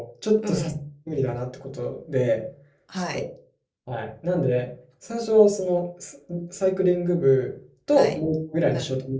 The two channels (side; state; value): both; identical; correlation 1.00